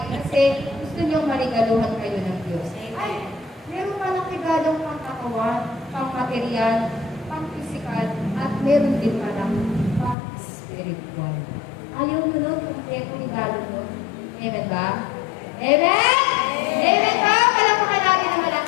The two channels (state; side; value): drops out; right; at 10.2 s